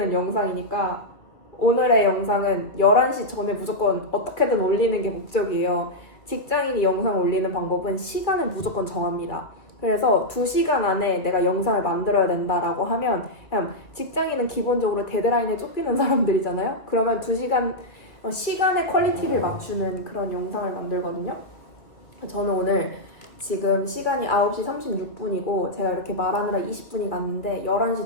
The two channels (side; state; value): right; late; 2.1 ms